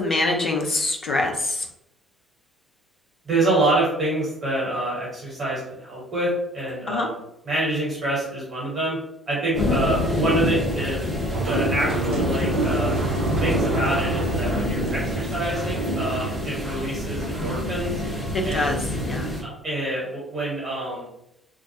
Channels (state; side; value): normal; both; correlation 0.51